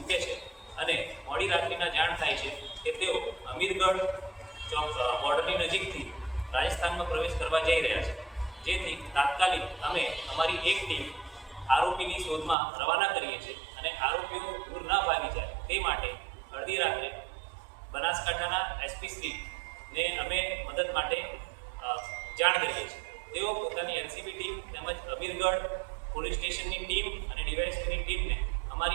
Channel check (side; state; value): left; drops out; at 12.6 s